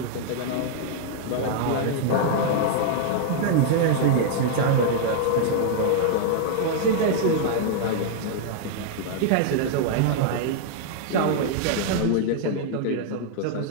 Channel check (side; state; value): both; different; correlation 0.00